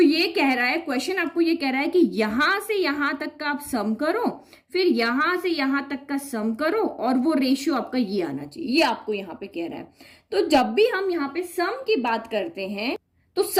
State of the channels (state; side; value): identical; both; correlation 1.00